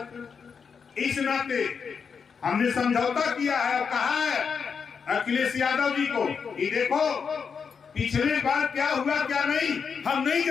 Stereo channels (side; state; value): right; quieter; 6.1 dB